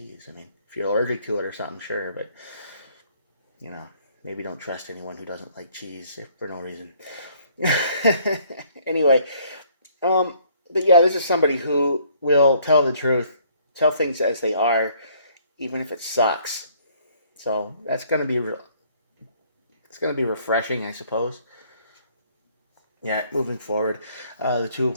I mean, if you're allergic to it or something, sure, but maybe don't trust anyone who doesn't like cheese for no reason. Anyway, but yeah, this is somebody who will tell the truth, tell things as they are, even if it sucks. So that's going to be it's going to be refreshing, I suppose. Yeah, moving forward, the Two of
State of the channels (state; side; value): inverted; both; correlation -0.62